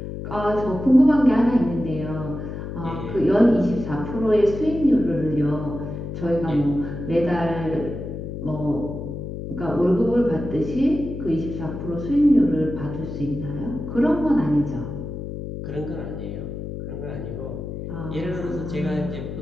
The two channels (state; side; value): noise; left; hum, 7 dB below the sound